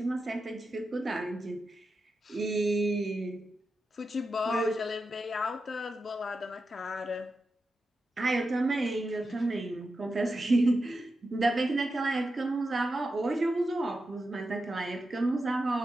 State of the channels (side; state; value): both; normal; correlation 0.89